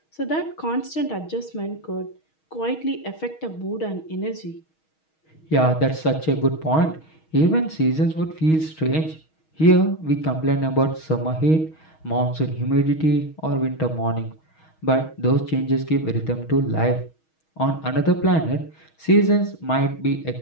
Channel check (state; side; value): late; right; 6.3 ms